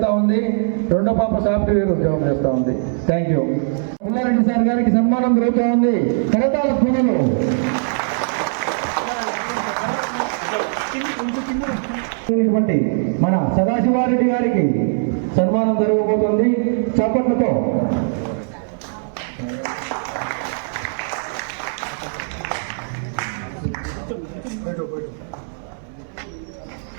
ఉంది, రెండో పాప సాఫ్ట్వేర్ ఉద్యోగం చేస్తూ ఉంది. Thank you. పుల్లారెడ్డి సార్ గారికి సన్మానం జరుగుతూ ఉంది. కరతాళ ధ్వనులు. మన సదాశివారెడ్డి గారికి సన్మానం జరగబోతుంది. చప్పట్లతో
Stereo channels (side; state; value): left; silent; digital silence